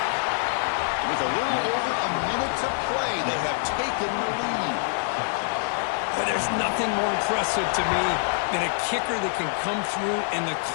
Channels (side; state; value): right; silent; 61 dB below the other